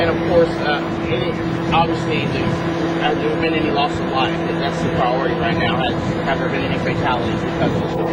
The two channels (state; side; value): identical; both; correlation 1.00